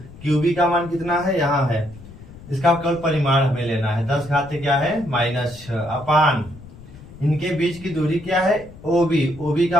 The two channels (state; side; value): noise; left; rumble, 18 dB below the sound